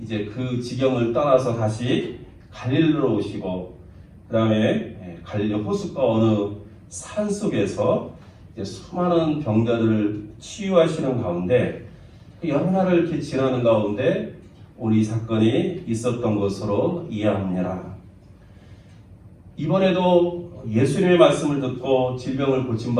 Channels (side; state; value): both; identical; correlation 1.00